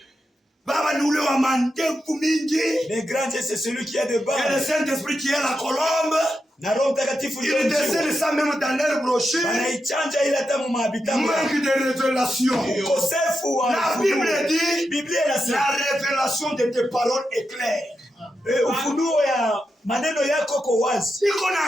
Baba ni ule wa mandevu mingi. Le grand Dieu c'est celui qui a de bas. Et le Saint-Esprit qui est la colombe. Na Roho Mtakatifu il décèle ça même dans leur brochure. Anaichanja ile hata mumabita. Manque de révélation. Ukosefu wa la Bible dit, Biblia inasema la révélation de tes paroles est claire. Ufunuo ya maneno yako kwa wazi. Iko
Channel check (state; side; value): normal; both; correlation 0.87